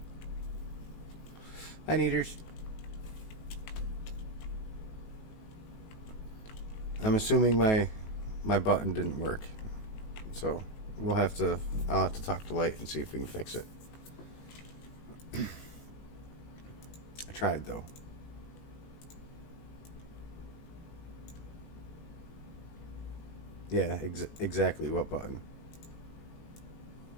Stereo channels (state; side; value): late; right; 19 ms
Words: Hi, Neaters. I'm assuming my button didn't work. So I'll have to talk to Light and see if we can fix it. I tried though. Yeah, exactly what button.